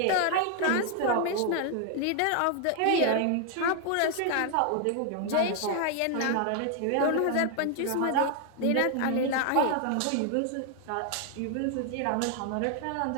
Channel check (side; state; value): both; different; correlation 0.00